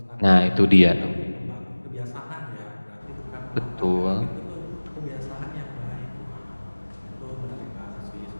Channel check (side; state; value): both; inverted; correlation -1.00